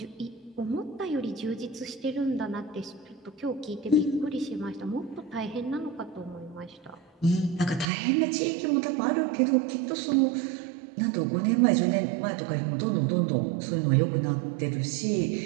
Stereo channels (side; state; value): left; drops out; at 7.9 s